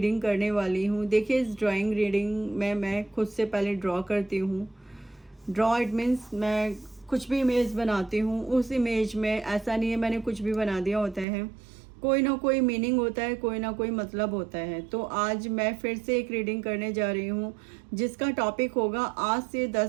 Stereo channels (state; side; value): drops out; left; at 11.2 s